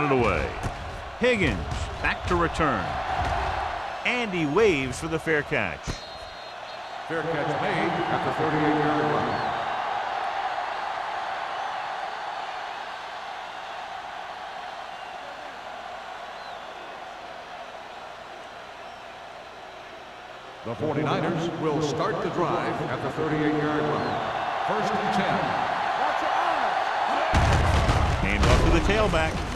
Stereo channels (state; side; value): identical; both; correlation 1.00